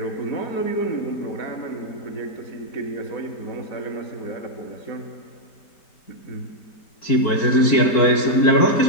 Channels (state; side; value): late; right; 4.5 ms